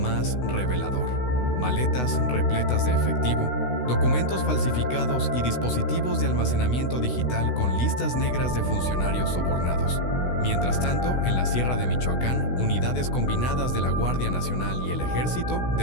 revelador. Maletas repletas de efectivo, documentos falsificados y dispositivos de almacenamiento digital con listas negras de funcionarios sobornados. Mientras tanto, en la Sierra de Michoacán, unidades combinadas de la Guardia Nacional y el Ejército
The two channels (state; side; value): late; right; 16 ms